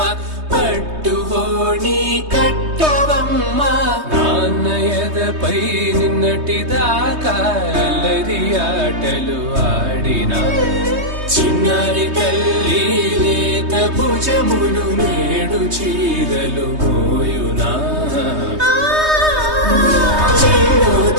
పట్టువోణి కట్టవమ్మ నాన్నయదపై నిన్నటిదాకా అల్లరి ఆటలు ఆడినా చిన్నారి తల్లి లేత భుజములు నేడు చీరలు మోయునా చెల్లో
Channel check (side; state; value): left; late; 3.2 ms